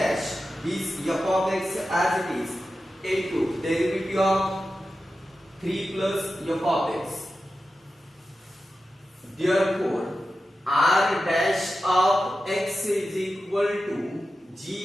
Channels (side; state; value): both; normal; correlation 0.92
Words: this f of x as it is, into derivative of 3 plus f of x. Therefore, r dash of x is equal to